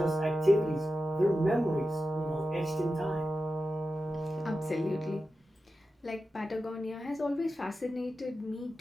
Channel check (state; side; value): normal; both; correlation 0.92